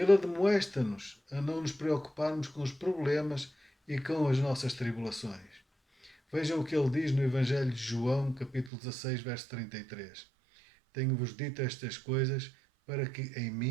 admoesta-nos a não nos preocuparmos com os problemas e com as nossas tribulações. Vejam o que ele diz no Evangelho de João, capítulo 16, verso 33. Tenho-vos dito estas coisas para que em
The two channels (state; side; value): drops out; left; at 8.7 s